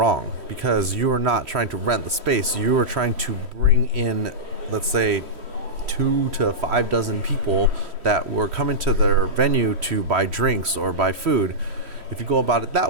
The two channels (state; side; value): late; left; 3.1 ms